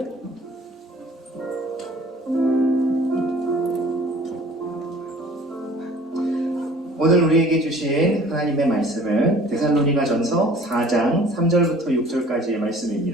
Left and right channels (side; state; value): both; normal; correlation 0.49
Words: 오늘 우리에게 주신 하나님의 말씀은 데살로니가전서 4장 3절부터 6절까지의